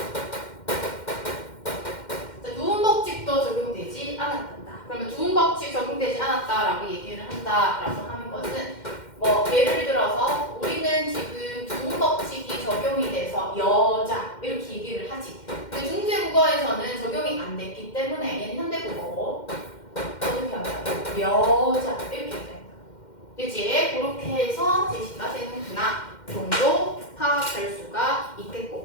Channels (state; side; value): late; right; 2.1 ms